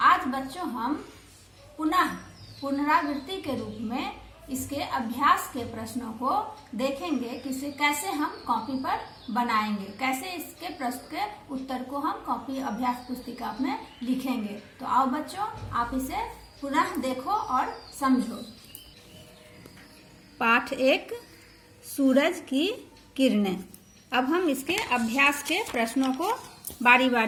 आज बच्चों हम पुनरावृत्ति के रूप में इसके अभ्यास के प्रश्नों को देखेंगे कि इसे कैसे हम कॉपी पर बनाएंगे, कैसे इसके प्रश्न के उत्तर को हम कॉपी अभ्यास पुस्तिका में लिखेंगे। तो आओ बच्चों, आप इसे पुनः देखो और समझो। पाठ 1 सूरज की किरणें। अब हम इसके अभ्यास के प्रश्नों को बारी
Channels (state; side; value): identical; both; correlation 1.00